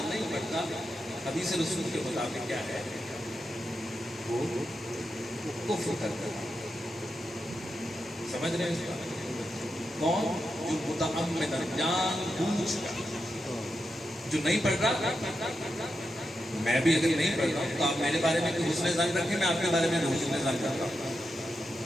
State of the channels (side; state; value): both; normal; correlation 0.87